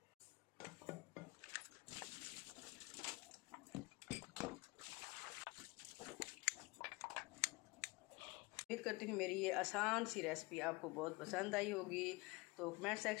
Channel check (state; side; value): quieter; right; 24.0 dB